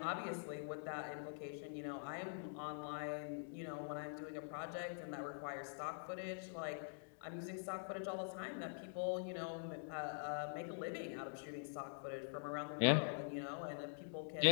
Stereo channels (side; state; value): right; silent; digital silence